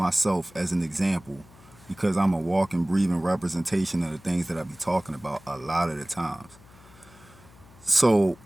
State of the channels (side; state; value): left; noise; hum, 24 dB below the sound